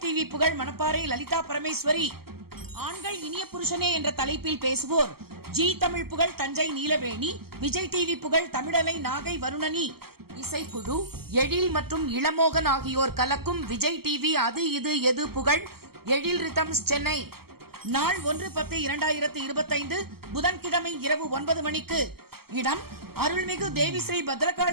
டிவி புகழ் மணப்பாறை லலிதா பரமேஸ்வரி. ஆண்கள் இனிய புருஷனே என்ற தலைப்பில் பேசுவோர் ஜி தமிழ் புகழ் தஞ்சை நீலவேணி, விஜய் டிவி புகழ் தமிழலை நாகை வருணனி. இசைக்குழு எழில் மற்றும் இளமோகன் ஆகியோர் கலக்கும் விஜய் டிவி அது இது எது புகழ் எழில் ரிதம்ஸ் சென்னை. நாள் 1/10/2025 புதன்கிழமை இரவு 9 மணிக்கு. இடம்: அருள்மிகு தேவி ஸ்ரீ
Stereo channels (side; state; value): left; late; 0.95 ms